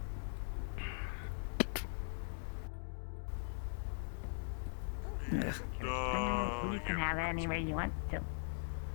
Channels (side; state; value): right; silent; digital silence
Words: Ugh. You can have it anywhere you want to.